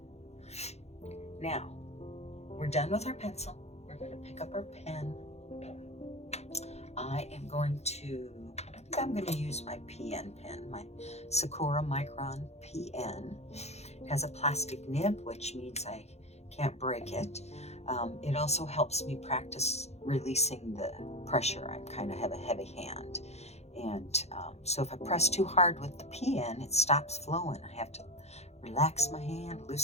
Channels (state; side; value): late; right; 0.31 ms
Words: Now, we're done with our pencil. We're going to pick up our pen. I'm going to use my PN pen, my Sakura Micron PN. It has a plastic nib, which means I can't break it. It also helps me practice releasing the pressure. I kind of have a heavy hand. And so if I press too hard with the PN, it stops flowing. I have to relax my hand,